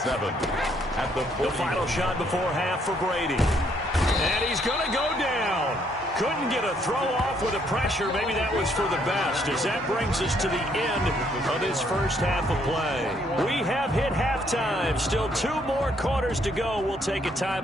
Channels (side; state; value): both; normal; correlation 0.69